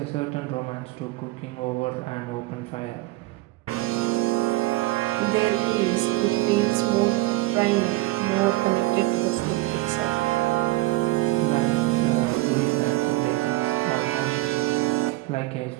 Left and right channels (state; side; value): quieter; left; 19.5 dB